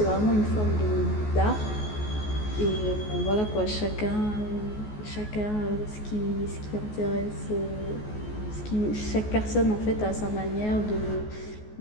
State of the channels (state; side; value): late; right; 14 ms